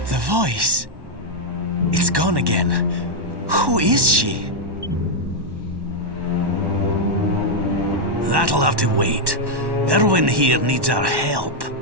The voice. It's gone again. Who is she? That'll have to wait. Irwin here needs our help.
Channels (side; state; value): left; late; 1.1 ms